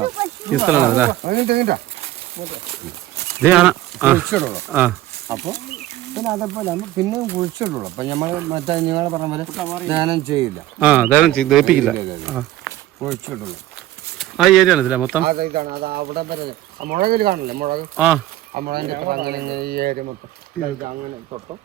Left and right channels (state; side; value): quieter; left; 14.9 dB